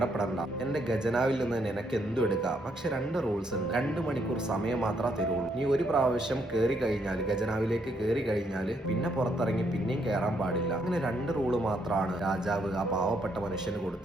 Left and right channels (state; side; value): normal; both; correlation 0.74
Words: എന്റെ ഖജനാവിൽ നിന്ന് നിനക്ക് എന്തും എടുക്കാം. പക്ഷെ 2 റൂൾസ് ഉണ്ട്. 2 മണിക്കൂർ സമയം മാത്രമേ തരുള്ളൂ. നീ ഒരു പ്രാവശ്യം കയറി കഴിഞ്ഞാൽ, ഖജനാവിലേക്ക് കയറി കഴിഞ്ഞാൽ പിന്നെ പുറത്തിറങ്ങി പിന്നെയും കയറാൻ പാടില്ല. അങ്ങനെ 2 റൂള് മാത്രമാണ് രാജാവ് ആ പാവപ്പെട്ട മനുഷ്യന്